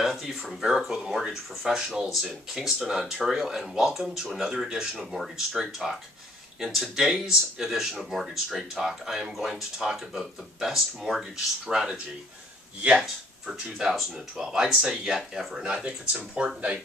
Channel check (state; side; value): normal; both; correlation 0.61